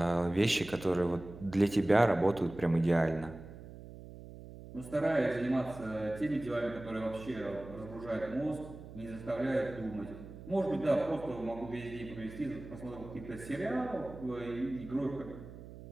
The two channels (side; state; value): right; noise; hum, 14 dB below the sound